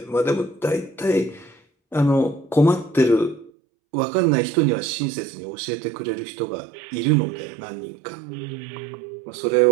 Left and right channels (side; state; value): left; drops out; at 3.5 s